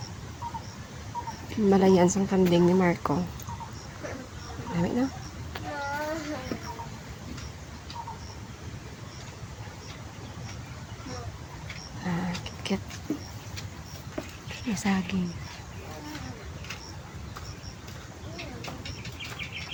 Malayan sang kanding ni Marco. Dami na. Kit-kit. Masaging.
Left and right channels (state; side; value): identical; both; correlation 1.00